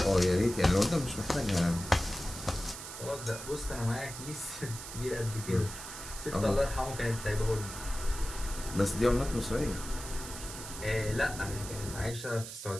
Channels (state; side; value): noise; right; hiss, 10 dB below the sound